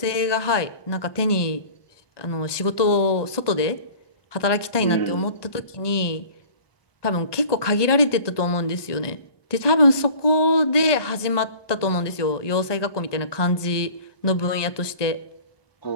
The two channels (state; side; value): late; right; 1.2 ms